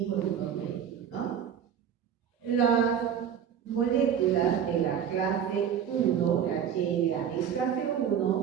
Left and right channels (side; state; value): left; quieter; 8.5 dB